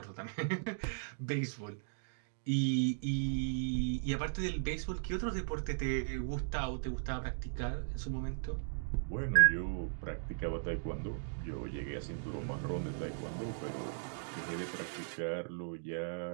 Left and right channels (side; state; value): left; silent; digital silence